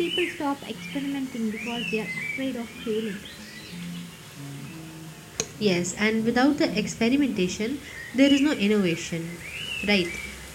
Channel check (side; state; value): both; identical; correlation 1.00